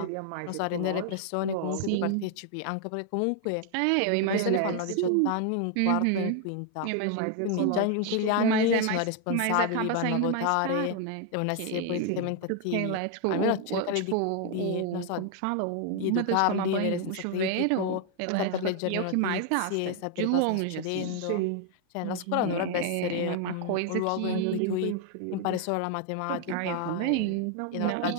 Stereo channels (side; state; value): both; different; correlation 0.00